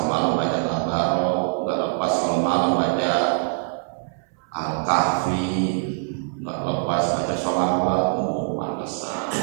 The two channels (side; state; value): left; silent; 63 dB below the other